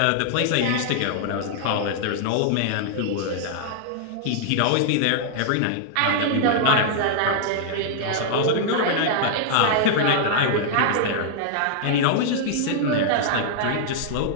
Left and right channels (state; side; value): different; both; correlation -0.01